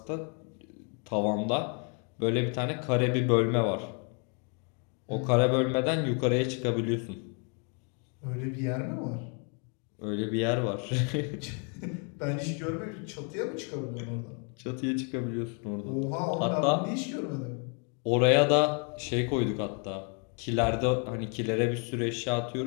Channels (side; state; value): right; quieter; 38.5 dB